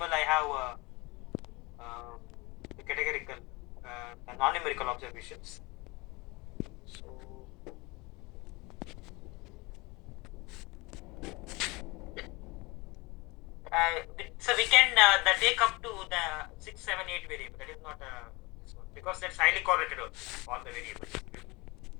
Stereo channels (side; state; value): right; quieter; 24.8 dB